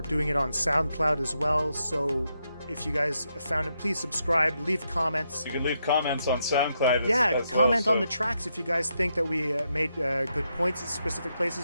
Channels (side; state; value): both; inverted; correlation -0.81